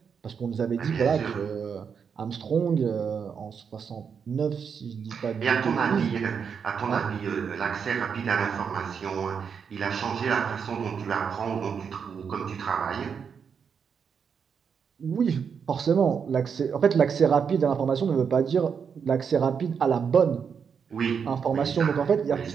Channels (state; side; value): quieter; left; 6.7 dB